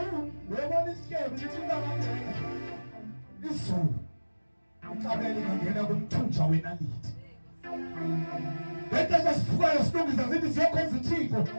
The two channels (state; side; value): inverted; both; correlation -1.00